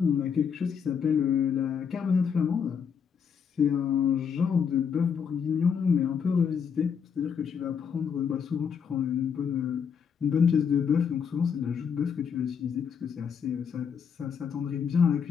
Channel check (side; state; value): right; quieter; 6.9 dB